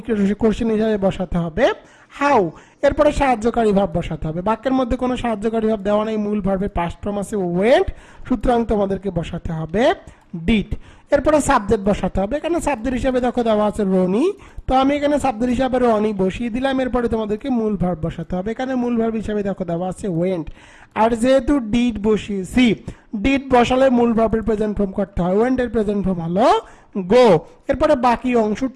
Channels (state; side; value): identical; both; correlation 1.00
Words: কোশ্চেন হিসাবে বসাতে হবে হাউ। এরপরে সাহায্যকারী ভাব বসাতে হবে। বাক্যের মধ্যে কোনো সাহায্যকারী ভাব দেওয়া নেই, মূল ভার্বের পাস্ট ফর্ম আছে ওয়েন্ট, সুতরাং তোমাদেরকে বসাতে হবে ডিড। এরপরে সাবজেক্ট বসাতে হবে, এখানে সাবজেক্ট হিসাবে দেখো দেওয়া আছে রনি, তো আমি এখানে সাবজেক্ট হিসাবে রনি বসিয়ে দিলাম। এরপরে তোমাদেরকে মূল ভার্ব বসাতে হবে, এখানে মূল ভার্ব হিসাবে দেখো দেওয়া আছে ওয়েন্ট, আর যেহেতু ডিড বসিয়েছি, ডিড বসালে মূল ভার্বের প্রেজেন্ট ফর্ম করতে হয়, ওয়েন্ট এর প্রেজেন্ট ফর্ম হলো গো। এরপরে বাকি অংশ